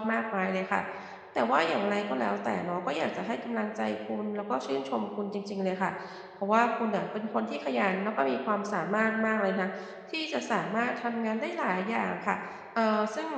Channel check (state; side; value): identical; both; correlation 1.00